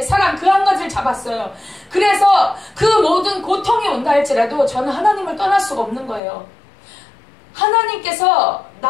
사랑, 그 한 가지를 잡았어요. 그래서 그 모든 고통이 온다 할지라도 저는 하나님을 떠날 수가 없는 거예요. 하나님께서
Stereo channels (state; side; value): drops out; right; at 6.2 s